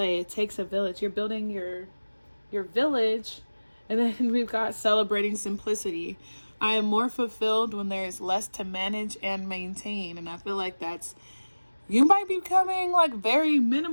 It takes a village. You're building your village. And then we've got celebrating simplicity. I am more fulfilled when there is less to manage and maintain. And I feel like you might be becoming like very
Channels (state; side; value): inverted; both; correlation -1.00